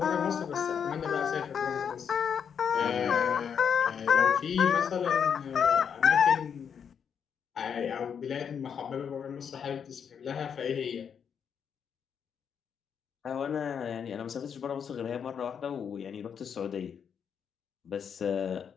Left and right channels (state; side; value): quieter; right; 7.4 dB